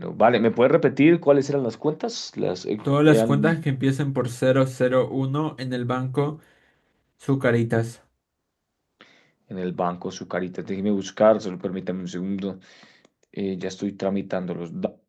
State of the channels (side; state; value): both; identical; correlation 1.00